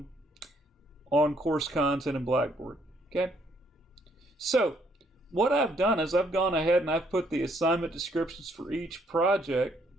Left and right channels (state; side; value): normal; both; correlation 0.69